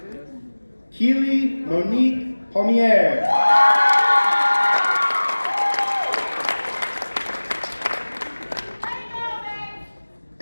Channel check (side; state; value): both; inverted; correlation -1.00